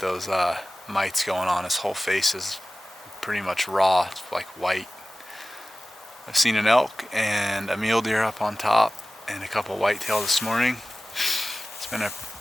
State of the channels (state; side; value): normal; both; correlation 0.96